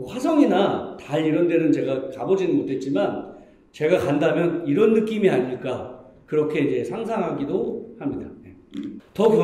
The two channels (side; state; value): both; identical; correlation 1.00